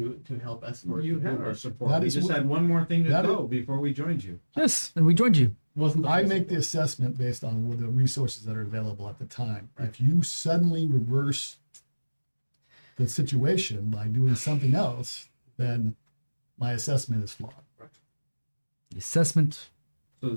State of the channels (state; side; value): inverted; both; correlation -1.00